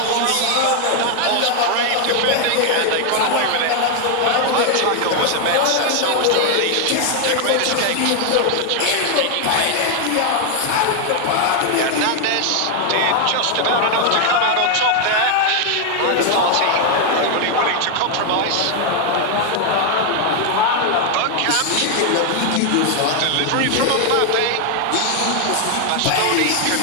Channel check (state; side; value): different; both; correlation 0.00